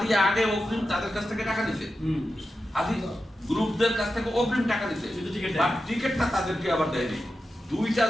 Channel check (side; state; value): both; normal; correlation 0.91